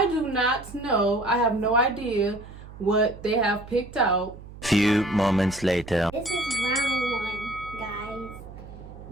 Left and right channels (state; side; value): noise; right; hum, 16 dB below the sound